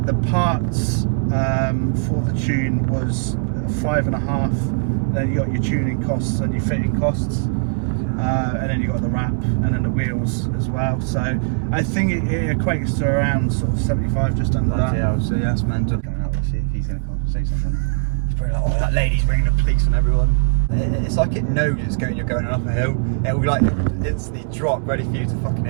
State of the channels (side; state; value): left; silent; digital silence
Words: The parts for the tune was 5.5. Then you got your tuning costs and your fitting costs, and then you got the wrap and then the wheels as well. So I think it equates to around sort of 75, just under that. Yeah, so yes, man, just coming out to see if he's going to come and say something. He's probably like, oh, that lady's bringing the police on everyone. It's like it knows you're going up a hill. It will like instantly drop, ready for you to fucking